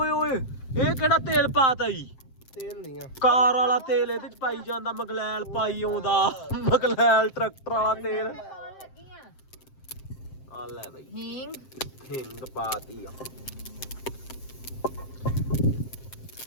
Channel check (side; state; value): right; late; 7.7 ms